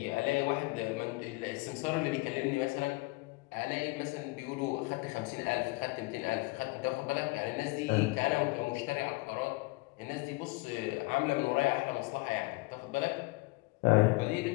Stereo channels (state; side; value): quieter; right; 24.0 dB